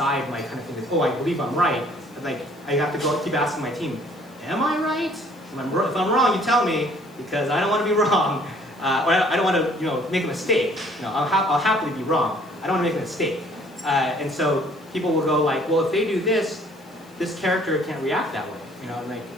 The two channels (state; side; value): noise; left; hiss, 29 dB below the sound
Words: my kind of think I believe I'm right. And I have to keep asking my team, am I right? If I'm wrong, you tell me, because I don't want to be wrong. Or I don't want to make a mistake. I'll happily be wrong. I don't want to make a mistake. And so people will go well, if they do this character can't react that way. I'm like,